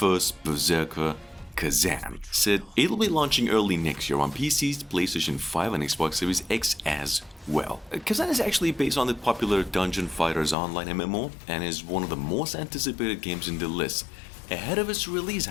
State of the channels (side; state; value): right; drops out; at 10.6 s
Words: Berserker Kazan. Said it'll be launching early next year on PCs, PlayStation 5 and Xbox Series X as well. Kazan is actually based on the popular Dungeon Fighters Online MMO and is one of the most anticipated games in the list. Ahead of its release,